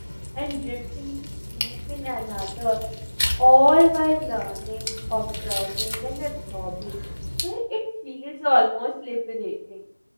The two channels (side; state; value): both; inverted; correlation -1.00